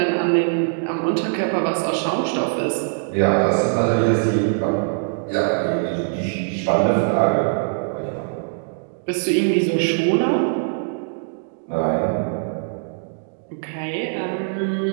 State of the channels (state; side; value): silent; left; digital silence